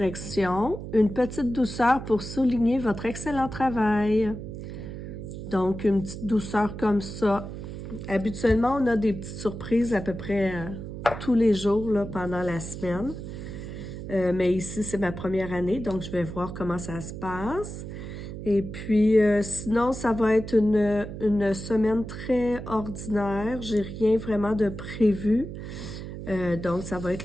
Une petite douceur pour souligner votre excellent travail. Donc, une petite douceur comme ça. Habituellement, on a des petites surprises à peu près tous les jours là, pendant la semaine. Mais ici, c'est ma première année, donc je vais voir comment ça se passe. Et puis, sinon, ça va être une semaine très ordinaire. J'ai rien vraiment de prévu. Donc, ça va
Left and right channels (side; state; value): right; noise; hum, 9 dB below the sound